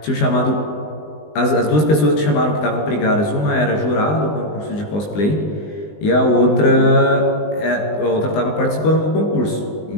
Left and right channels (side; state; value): right; late; 20 ms